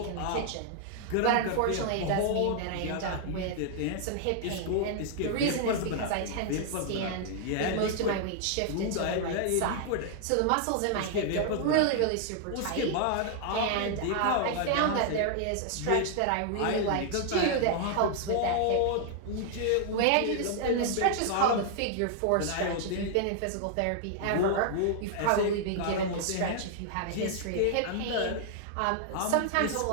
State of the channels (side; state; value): both; different; correlation -0.01